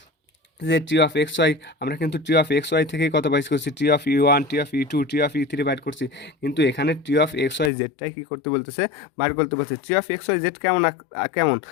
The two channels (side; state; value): right; drops out; at 7.7 s